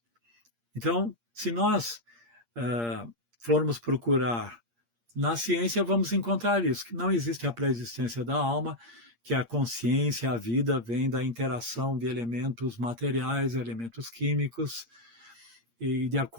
Então, se nós formos procurar na ciência, vamos encontrar isso, que não existe a pré-existência da alma, que a consciência, a vida, vem da interação de elementos materiais, elementos químicos, e de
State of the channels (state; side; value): late; left; 8.6 ms